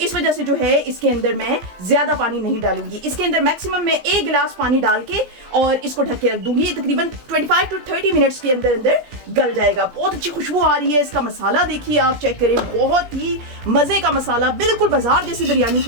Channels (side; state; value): left; late; 17 ms